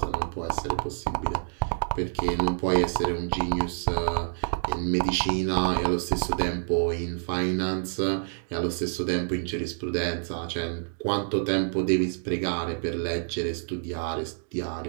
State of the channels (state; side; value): silent; left; digital silence